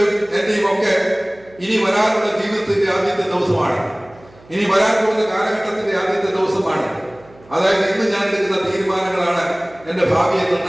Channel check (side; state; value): right; noise; hum, 26 dB below the sound